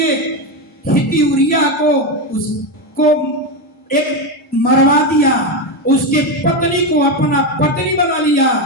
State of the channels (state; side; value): normal; both; correlation 0.12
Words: हित्ती उरिया को उसको एक मरवा दिया, उसके पत्नी को अपना पत्नी बना लिया।